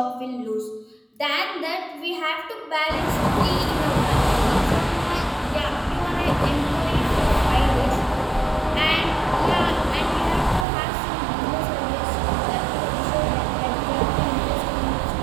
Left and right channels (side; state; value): left; drops out; at 10.7 s